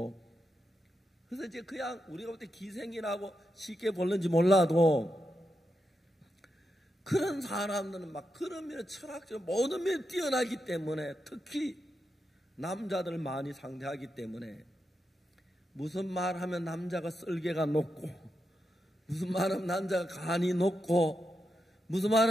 그래서 이제 그냥 우리가 볼 때 기생이라고 쉽게 볼는지 몰라도 그런 사람들은 막 그런 면에 철학적으로 모든 면에 뛰어나기 때문에 특히 남자들 많이 상대하기 때문에 무슨 말하면 남자가 쓸개가 높고 무슨 말하면 남자가 간이 높고 무슨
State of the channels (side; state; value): both; normal; correlation 0.86